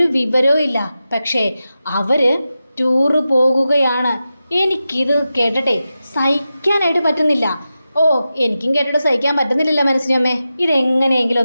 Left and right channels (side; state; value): both; inverted; correlation -0.92